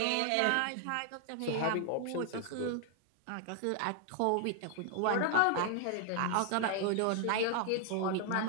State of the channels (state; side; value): different; both; correlation 0.00